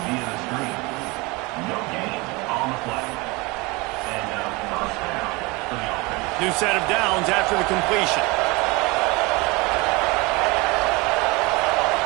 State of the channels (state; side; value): quieter; left; 25.1 dB